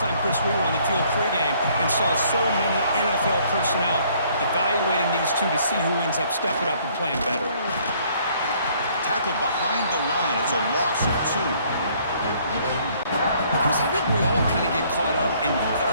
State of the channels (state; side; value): inverted; both; correlation -0.62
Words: Chris, we were on the field pregame and saw so many NFL personnel evaluating these two to see who ends up stepping up and playing better. Tackled behind the line. It's a loss of 2. Chris, I think we all kind of get caught up in